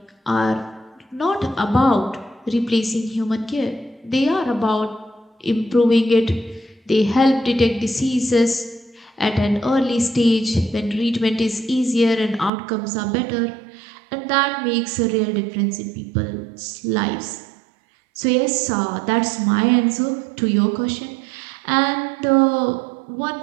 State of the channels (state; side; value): drops out; left; at 12.5 s